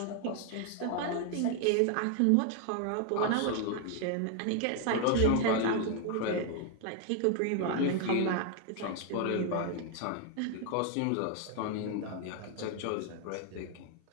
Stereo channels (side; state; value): both; different; correlation 0.00